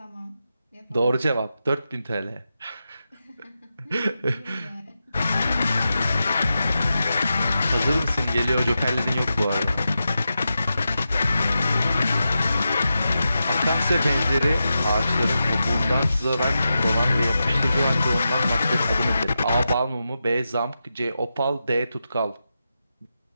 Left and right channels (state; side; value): inverted; both; correlation -0.89